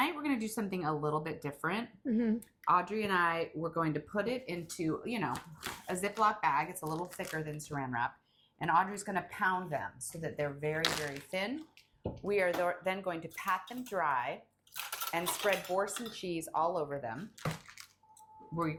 we're going to do something a little bit different. Audrey and I, we're going to put it into, you know, a Ziploc bag. It's a little thicker than Saran wrap. And Audrey's going to pound them so that they're very, very thin. We are then going to pat them dry and spread Boursin cheese all over them. We're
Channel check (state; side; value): identical; both; correlation 1.00